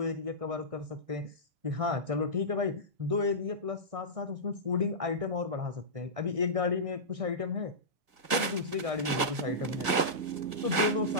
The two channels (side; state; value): left; late; 1.6 ms